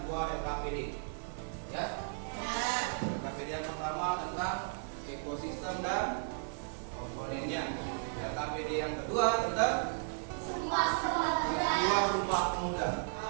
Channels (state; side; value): silent; left; digital silence